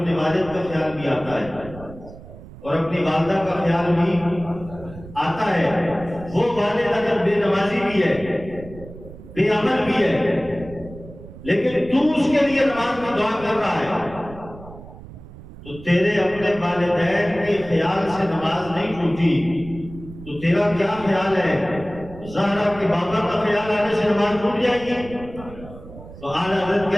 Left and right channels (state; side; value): noise; right; rumble, 16 dB below the sound